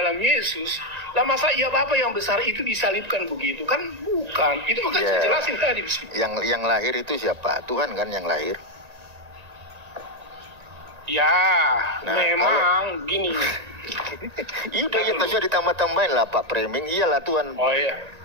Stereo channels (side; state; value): left; late; 1.8 ms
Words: Yesus, lah masa iya Bapa yang besar itu disalibkan begitu? Kan bukan. Itu makanya saya jelasin tadi. Yang lahir itu siapa? Tuhan kan yang lahir. Ya, nah, memang gini. Iya udah ya kasih ditambah-tambahin lah Pak Framing. Iyalah Tuhan. Oh iya.